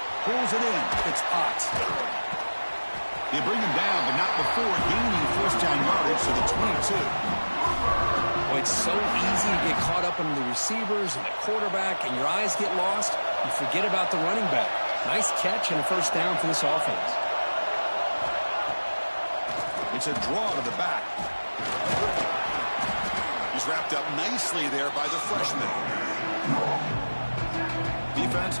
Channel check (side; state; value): both; inverted; correlation -1.00